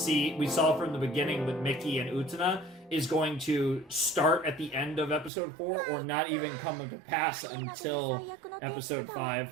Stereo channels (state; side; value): drops out; left; at 5.3 s